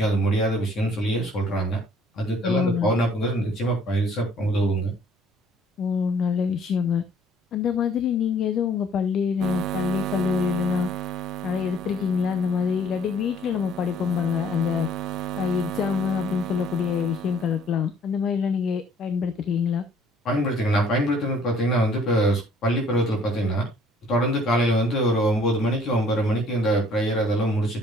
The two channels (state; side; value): normal; both; correlation 0.58